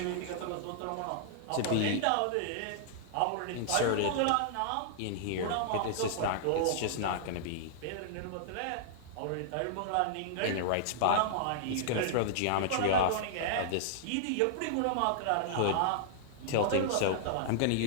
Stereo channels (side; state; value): both; different; correlation -0.01